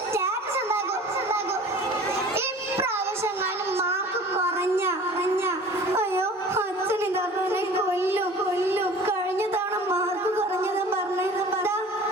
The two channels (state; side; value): normal; both; correlation 0.44